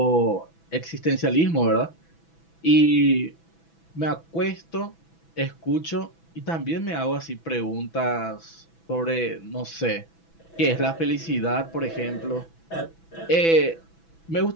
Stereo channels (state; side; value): late; right; 6.0 ms